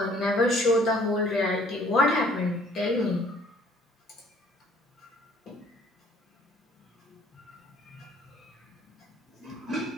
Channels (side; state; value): both; normal; correlation 0.58